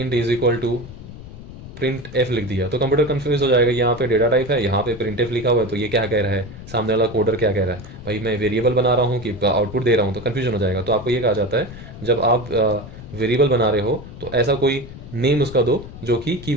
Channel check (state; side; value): noise; left; rumble, 14 dB below the sound